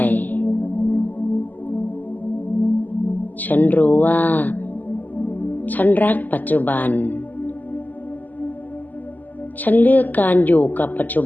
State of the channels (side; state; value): right; late; 0.083 ms